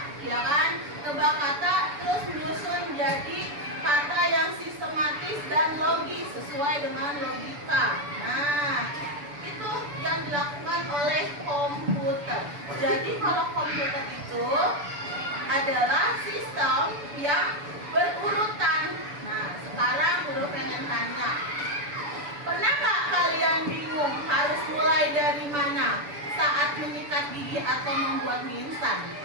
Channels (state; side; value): late; left; 6.9 ms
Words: ya kan? Tebak kata terus menyusun jadi kata yang sistematis dan logis sesuai dengan logika. Nah, itu yang dilakukan oleh komputer. Jadi kalau komputer itu adalah sistem yang berurutan. Nah, sekarang Guru pengen tanya, pernah nggak kalian bingung harus mulai dari mana saat menyikat gigi atau membuat mie instan?